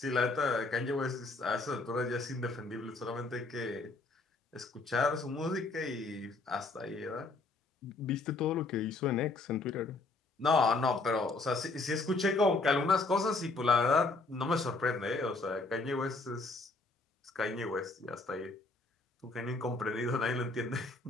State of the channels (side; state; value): right; quieter; 3.4 dB